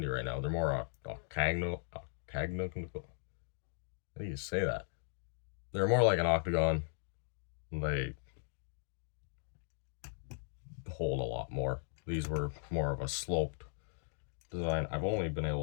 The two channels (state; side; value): silent; right; digital silence